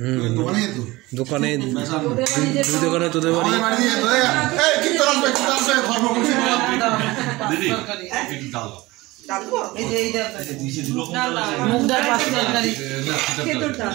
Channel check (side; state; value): left; quieter; 20.6 dB